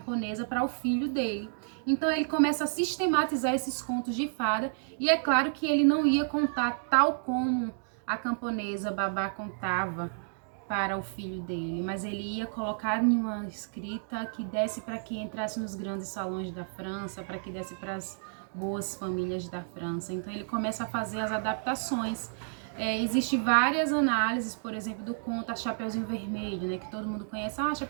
para o filho dele. Então ele começa a sistematizar esses contos de fada, e é claro que ele não ia contar tal como a camponesa babá contava para o filho dele, mas ele ia colocar em uma escrita que desse para que entrasse nos grandes salões da França, para que desse para as boas famílias da França. Então ele começa a fazer as adaptações. Existem várias análises, por exemplo, do conto A Chapeuzinho Vermelho, né, que todo mundo conhece.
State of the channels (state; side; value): silent; left; digital silence